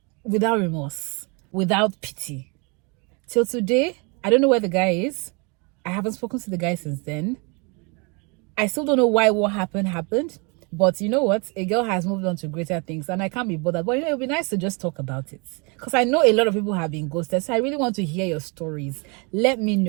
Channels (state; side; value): quieter; left; 31.7 dB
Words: without remorse, without pity. Till today, I don't know where the guy is. I haven't spoken to the guy since then. I still don't know why what happened. But you know what? A girl has moved on to greater things, and I can't be bothered. But it would be nice to just talk about it, because I know a lot of people have been ghosted. So I really want to hear your stories. Let me